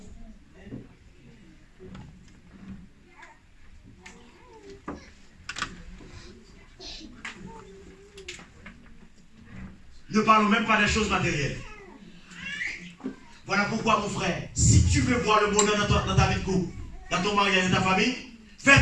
Ne parlons même pas des choses matérielles. Voilà pourquoi, mon frère, si tu veux voir le bonheur dans ta vie de couple, dans ton mariage et dans ta famille, fais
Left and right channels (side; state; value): both; identical; correlation 1.00